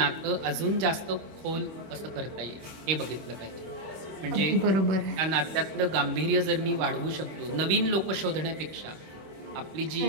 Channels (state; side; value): late; left; 26 ms